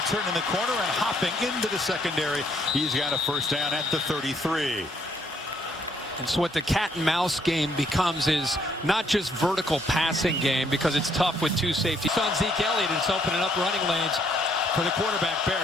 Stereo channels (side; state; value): both; normal; correlation 0.68